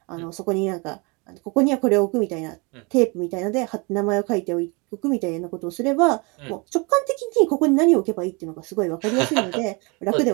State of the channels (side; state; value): left; quieter; 29.5 dB